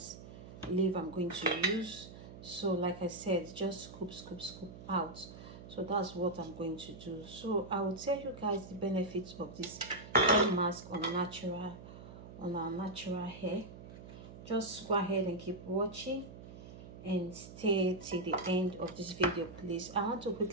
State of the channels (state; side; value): noise; right; hum, 14 dB below the sound